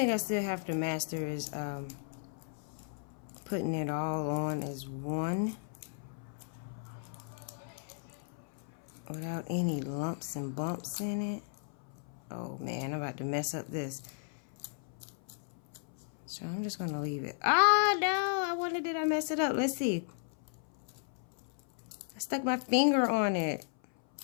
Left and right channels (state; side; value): silent; right; 54 dB below the other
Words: I still have to master is putting it all on as one without any lumps and bumps in it. Oh man, I'm about to mess up this. Let's So I'm just gonna leave it. Ah, no, I wonder did I mess it up? Let's see. I stuck my finger on it.